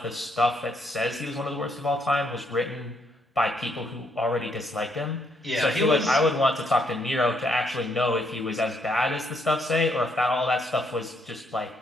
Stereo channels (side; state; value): both; normal; correlation 0.73